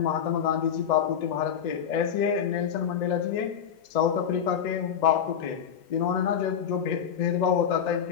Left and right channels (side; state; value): right; quieter; 8.2 dB